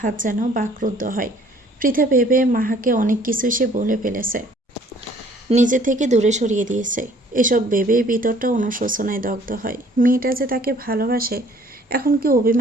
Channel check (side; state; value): both; normal; correlation 0.57